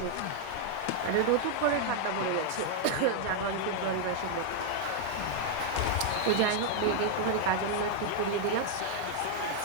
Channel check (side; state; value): both; different; correlation 0.00